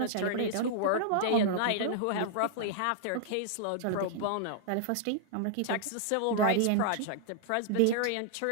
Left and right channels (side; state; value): both; different; correlation -0.01